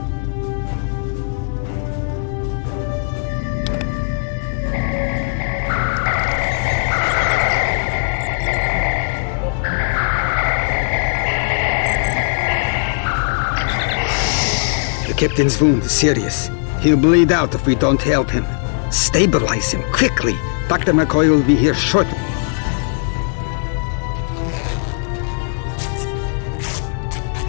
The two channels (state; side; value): silent; right; 65 dB below the other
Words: The captain's wound is serious. He'll bleed out if we don't help him. Stabilize him, quickly! Dr. McCoy will be here shortly.